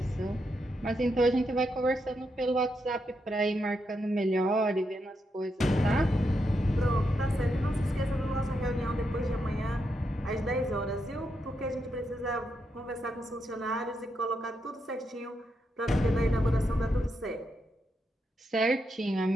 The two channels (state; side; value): normal; both; correlation 0.82